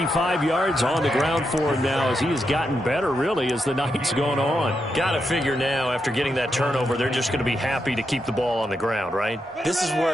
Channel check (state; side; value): normal; both; correlation 0.84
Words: yards on the ground for him now as he has gotten better, really, as the night's gone on. Got to figure now, after getting that turnover, they're just going to be happy to keep the ball on the ground, right? This is